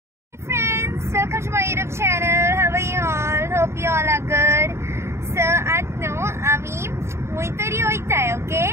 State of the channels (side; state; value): left; late; 0.13 ms